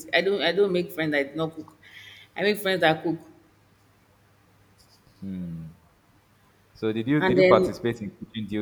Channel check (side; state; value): both; identical; correlation 1.00